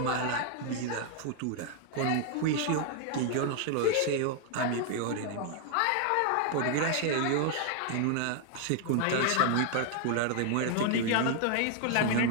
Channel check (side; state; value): both; different; correlation 0.00